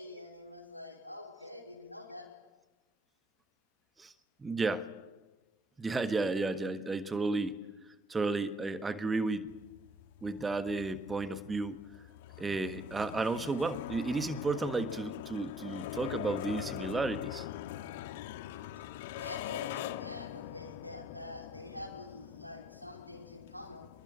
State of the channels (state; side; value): normal; both; correlation 0.66